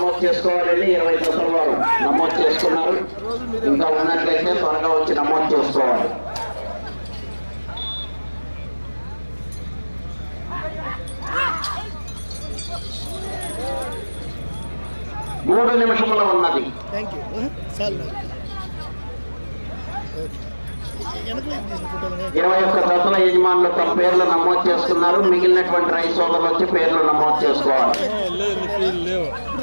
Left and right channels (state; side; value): inverted; both; correlation -1.00